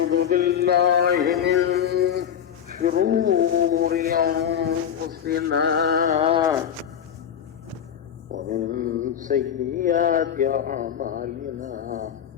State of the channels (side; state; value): right; quieter; 8.9 dB